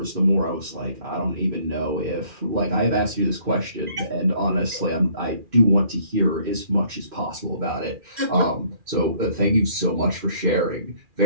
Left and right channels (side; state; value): left; late; 2.4 ms